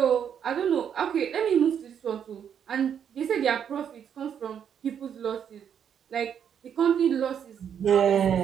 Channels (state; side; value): quieter; left; 8.4 dB